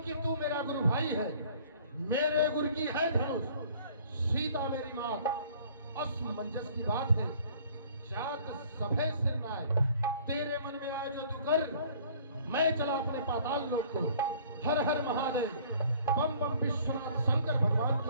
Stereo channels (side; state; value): both; inverted; correlation -0.54